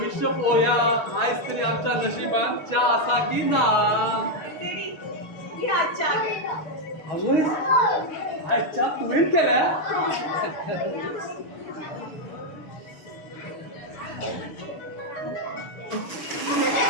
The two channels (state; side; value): late; right; 6.2 ms